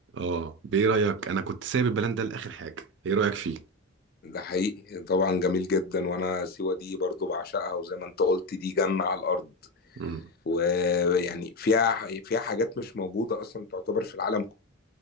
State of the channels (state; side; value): normal; both; correlation 0.15